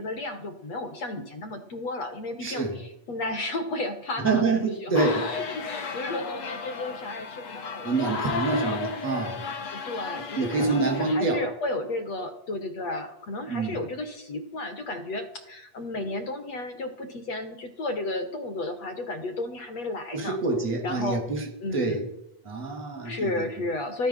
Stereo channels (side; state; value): right; late; 8.3 ms